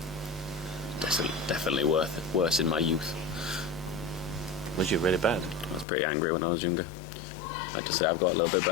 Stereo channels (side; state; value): right; drops out; at 5.9 s